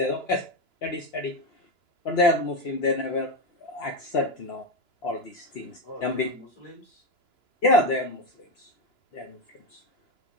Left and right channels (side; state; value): right; late; 2.9 ms